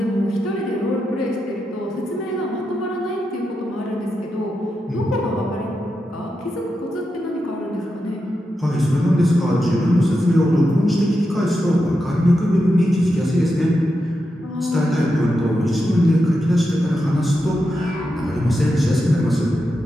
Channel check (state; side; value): normal; both; correlation 0.87